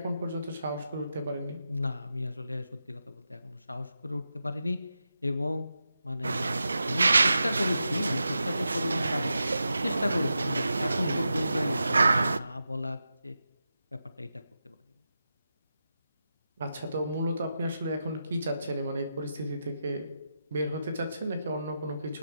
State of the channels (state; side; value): inverted; both; correlation -0.89